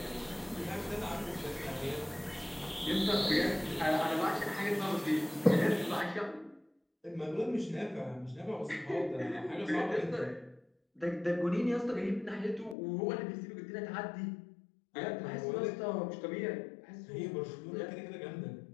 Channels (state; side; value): drops out; right; at 12.8 s